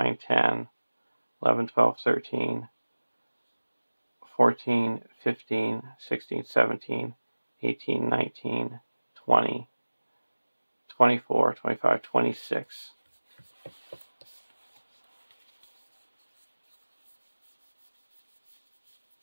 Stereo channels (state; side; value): inverted; both; correlation -1.00